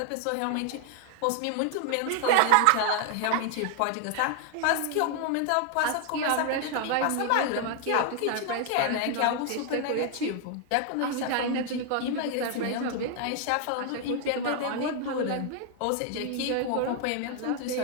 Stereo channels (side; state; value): both; different; correlation 0.00